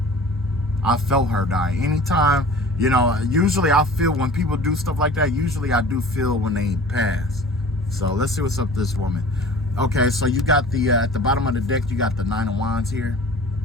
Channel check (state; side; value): normal; both; correlation 0.43